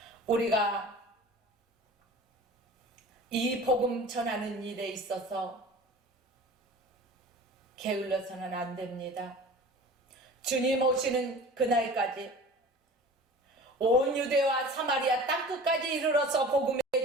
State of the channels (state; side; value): normal; both; correlation 0.40